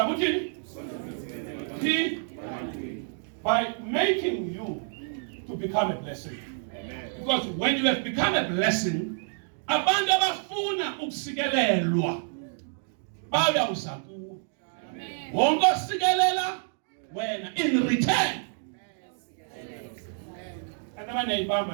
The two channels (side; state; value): left; silent; digital silence